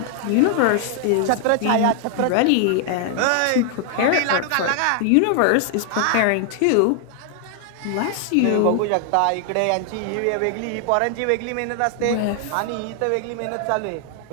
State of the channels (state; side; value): different; both; correlation 0.00